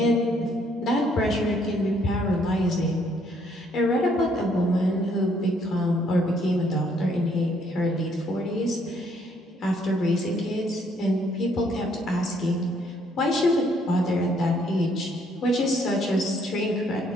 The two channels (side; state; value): both; normal; correlation 0.67